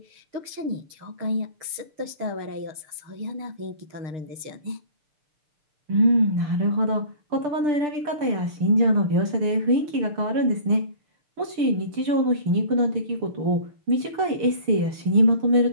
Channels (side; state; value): left; late; 6.7 ms